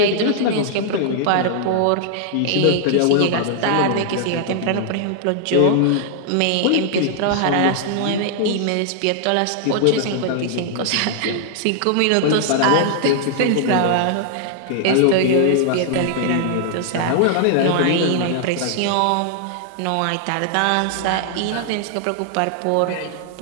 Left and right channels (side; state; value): both; different; correlation -0.01